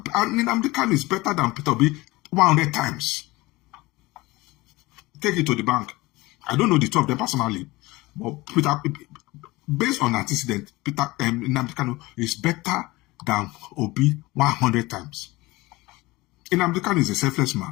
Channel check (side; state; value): right; quieter; 20.9 dB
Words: Kanu is better than Peter Obi 100 times. Take it to the bank. I don't know the two of them personally, but based on antecedent, Nnamdi Kanu is better than Obi 100 times. Nnamdi Kanu is a selfless